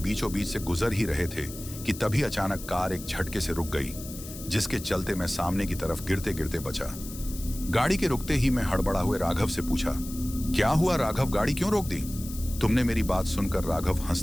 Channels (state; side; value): noise; left; hiss, 13 dB below the sound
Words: बीच से गुजर ही रहे थे कि तभी अचानक कार एक झटके से रुक गई, जिसके चलते मैं सामने की तरफ गिरते गिरते बचा। गाड़ी के रुकते ही मैं हड़बड़ा हुए राघव से पूछा, क्या हुआ राघव, गाड़ी क्यों रोक दी? तुमने मेरी बात सुनकर राघव